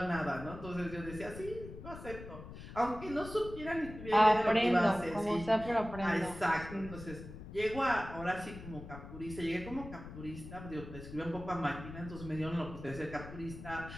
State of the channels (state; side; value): noise; left; rumble, 12 dB below the sound